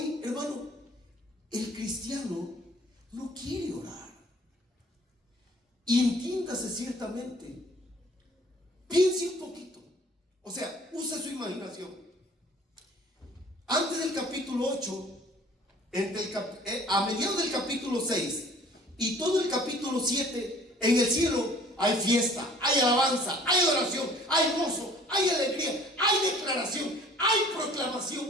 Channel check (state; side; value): normal; both; correlation 0.52